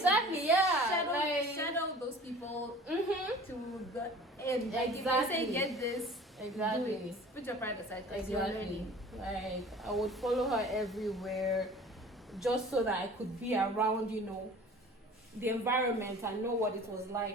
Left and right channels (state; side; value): normal; both; correlation 0.45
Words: yeah. shadow those people to the end. Exactly. If they say get this, Exactly. do it. Put your pride aside because you're learning. Like I would follow her everywhere, just so that I could be around, you know, the environment and know what it was